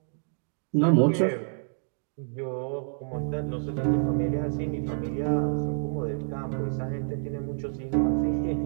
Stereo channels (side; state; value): left; silent; digital silence